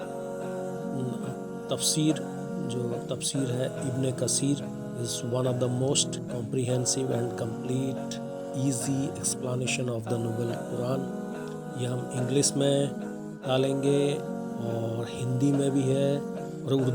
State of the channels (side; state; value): both; identical; correlation 1.00